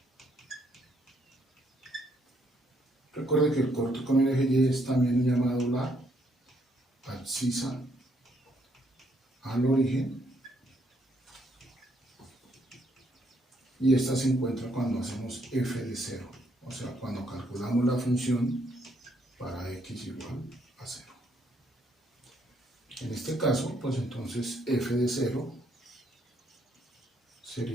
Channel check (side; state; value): both; normal; correlation 0.71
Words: Recuerde que el corte con el eje Y es también llamado la abscisa al origen, y esta se encuentra cuando hacemos f de 0, o sea, cuando calculamos la función para x igual a 0. En este caso, pues entonces f de 0